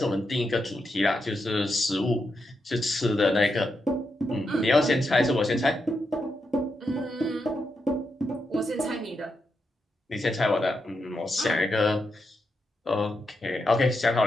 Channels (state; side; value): normal; both; correlation 0.84